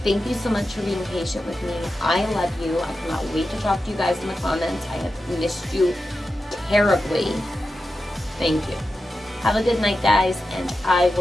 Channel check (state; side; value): normal; both; correlation 0.91